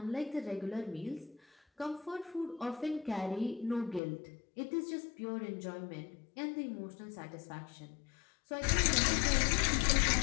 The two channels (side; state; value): right; drops out; at 4.0 s